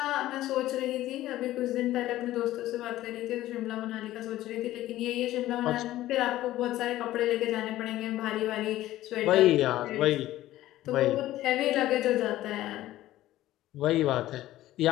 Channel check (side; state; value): right; quieter; 14.9 dB